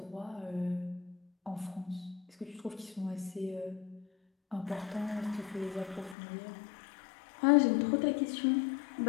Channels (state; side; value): drops out; right; at 6.2 s